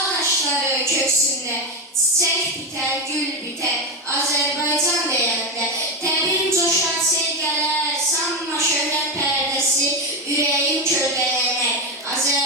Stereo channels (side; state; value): both; normal; correlation 0.12